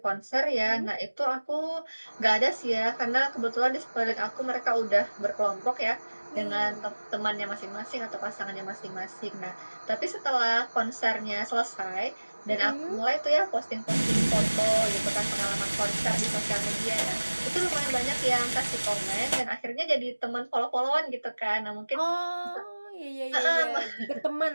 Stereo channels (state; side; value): inverted; both; correlation -1.00